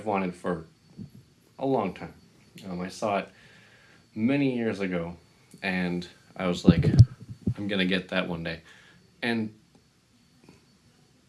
wanted for a long time. I saw it many years ago and I was like, I'm gonna get that one day. And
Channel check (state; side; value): identical; both; correlation 1.00